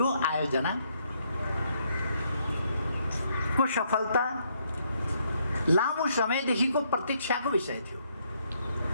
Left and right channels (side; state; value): both; inverted; correlation -0.72